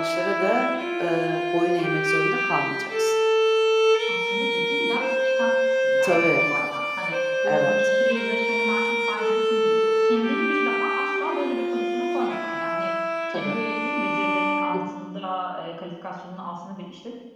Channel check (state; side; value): identical; both; correlation 1.00